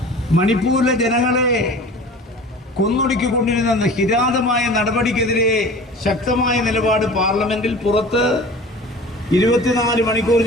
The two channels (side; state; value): both; normal; correlation 0.41